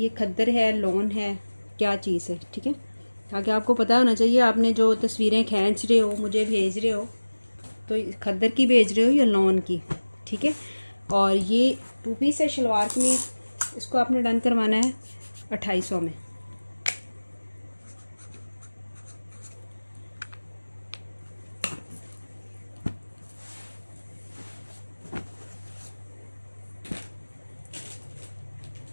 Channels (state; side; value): inverted; both; correlation -1.00